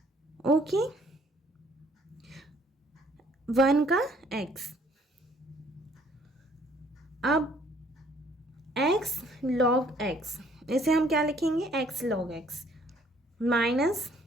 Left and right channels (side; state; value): both; normal; correlation 0.61